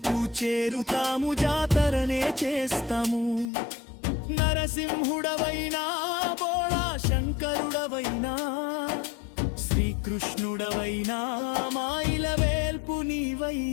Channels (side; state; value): right; drops out; at 3.5 s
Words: చేరుతాము, జాతరనే చేస్తాము. నరసింహుడవైనా బోళా శంకరుడవైనా, శ్రీకృష్ణుడవైనా మాయిల వేల్పు